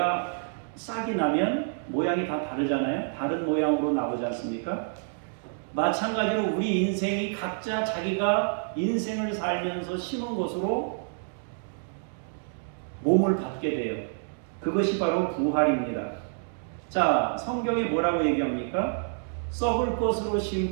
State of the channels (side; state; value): left; silent; digital silence